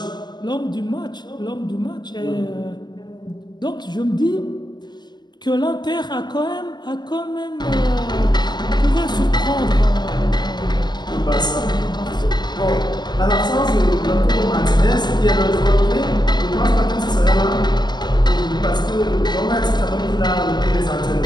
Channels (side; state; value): right; late; 0.21 ms